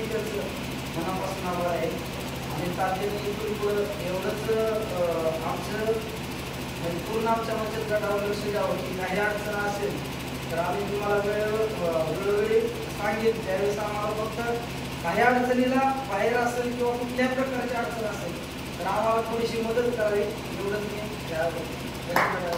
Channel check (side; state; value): both; identical; correlation 1.00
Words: त्यांचं मनापासून आभार आहे। आणि तातडीने इथून पुढं एवढंच आमचं पूर्ण आमच्या बचत गटावर लक्ष द्यावं की काही अडचण असेल तर आम्ही तुम्हाला वेळोवेळी सांगेन। त्यावेळेस आम्हाला फक्त काही अडचणीला बाहेर असेल किंवा कुठल्याही प्रकारची अडचण असेल तर आम्हाला थोडीशी मदत करावी एवढंच मी